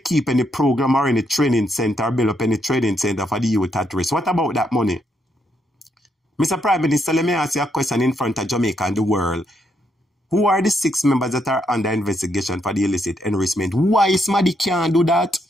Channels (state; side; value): normal; both; correlation 0.77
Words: any program or any training center or build up any training center for the youth at risk. What about that money? Mr. Prime Minister, let me ask you a question in front of Jamaica and the world. Who are the 6 members that are under investigation for the illicit enrichment? Why somebody can't do that?